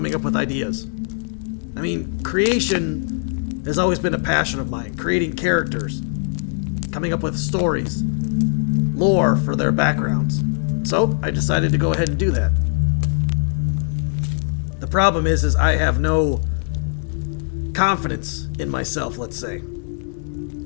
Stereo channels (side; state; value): right; silent; 65 dB below the other